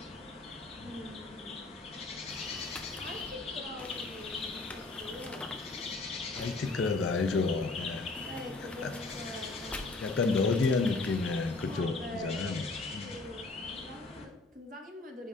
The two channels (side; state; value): right; quieter; 3.4 dB